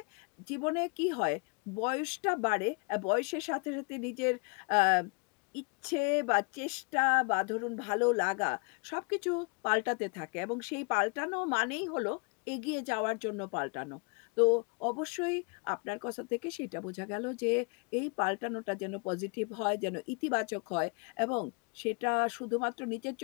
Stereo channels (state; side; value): quieter; right; 34.0 dB